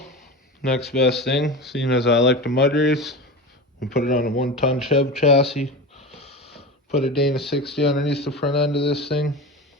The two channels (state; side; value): normal; both; correlation 0.27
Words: next best thing, seeing as I like to mud race, we put it on a 1-ton Chev chassis. Put a Dana 60 underneath the front end of this thing.